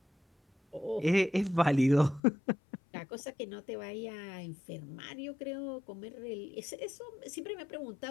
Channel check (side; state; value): right; drops out; at 2.2 s